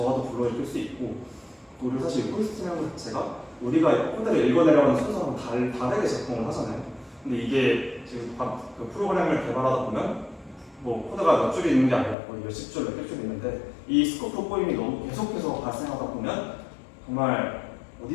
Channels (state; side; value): drops out; right; at 12.2 s